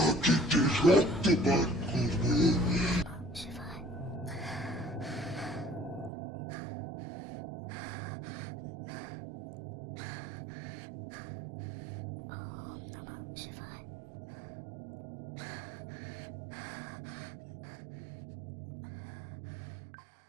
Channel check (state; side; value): drops out; left; at 6.1 s